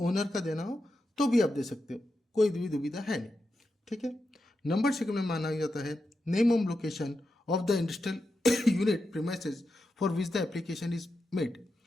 का देना हो तो भी आप दे सकते हो, कोई भी दुविधा है नहीं। ठीक है। नंबर 2 में माना जाता है name of location of the industrial unit premises for which the application is made.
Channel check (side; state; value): both; normal; correlation 0.88